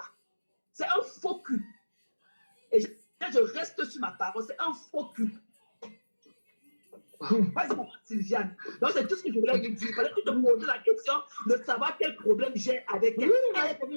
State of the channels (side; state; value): both; inverted; correlation -1.00